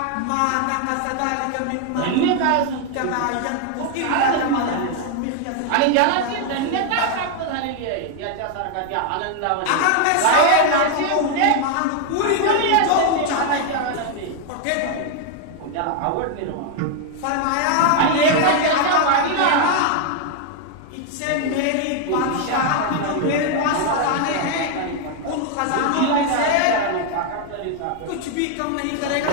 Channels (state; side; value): different; both; correlation 0.00